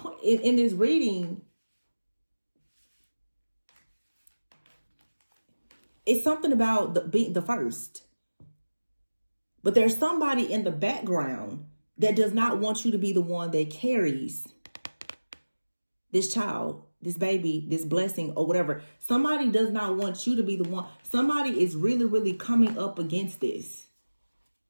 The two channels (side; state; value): both; inverted; correlation -1.00